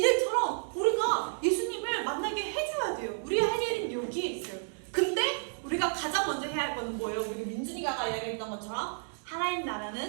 우리가 예수님을 만나게 해줘야 돼요. 우리 할 일은 여기에 있어요. 근데 우리가 가장 먼저 해야 할 거는 뭐예요? 우리 민준이가 이야기했던 것처럼 하나님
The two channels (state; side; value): silent; left; 57 dB below the other